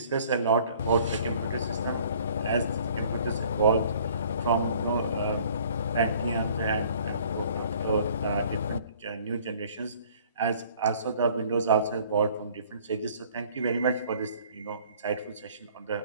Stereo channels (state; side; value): inverted; both; correlation -0.54